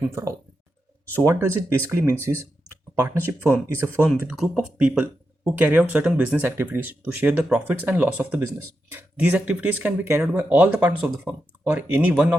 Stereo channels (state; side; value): normal; both; correlation 0.87